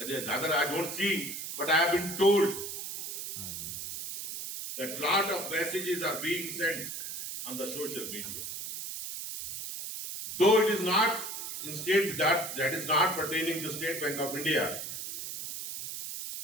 I don't see, but I have been told that lot of messages are being sent on the social media. Though it is not in state that is not pertaining to State Bank of India,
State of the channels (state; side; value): noise; right; hiss, 7 dB below the sound